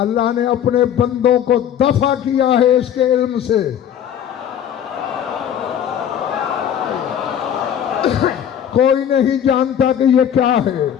ने अपने बंदों को दफा किया है इसके इल्म से। कोई नहीं जानता कि ये क्या है।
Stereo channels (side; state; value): right; quieter; 9.4 dB